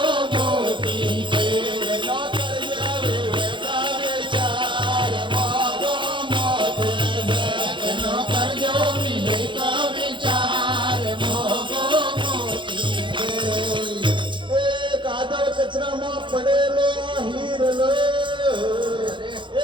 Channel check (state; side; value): late; left; 0.23 ms